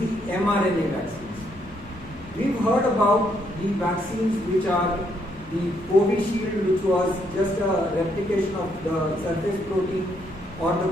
mRNA vaccines. We've heard about the vaccines which are the Covishield, which was just a replication of the surface protein, or the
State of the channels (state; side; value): noise; left; rumble, 21 dB below the sound